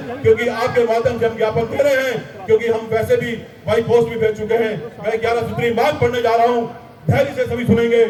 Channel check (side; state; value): both; identical; correlation 1.00